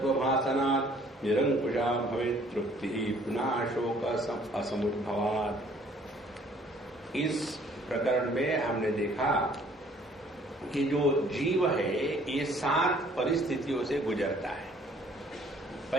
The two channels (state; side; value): normal; both; correlation 0.59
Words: निरंकुशा भवेत् तृप्तिः पुनः शोक असमुद्भवात्। इस प्रकरण में हमने देखा कि जो जीव है ये 7 परिस्थितियों से गुजरता है।